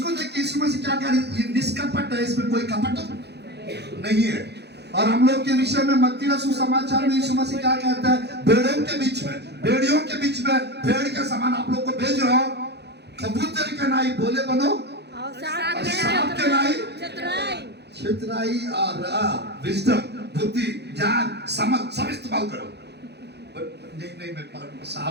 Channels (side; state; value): left; late; 0.48 ms